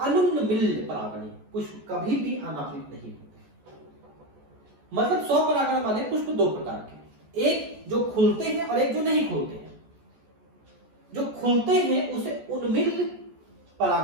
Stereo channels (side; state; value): left; late; 14 ms